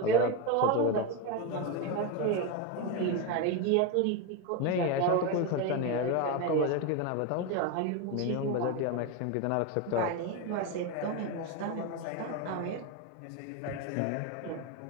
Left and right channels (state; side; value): different; both; correlation 0.03